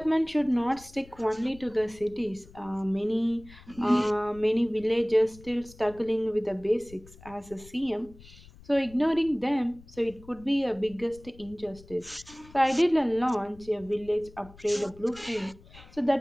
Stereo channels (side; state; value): left; noise; rumble, 21 dB below the sound